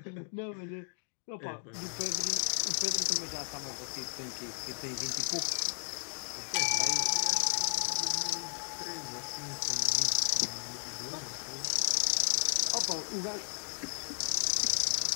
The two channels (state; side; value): silent; right; 55 dB below the other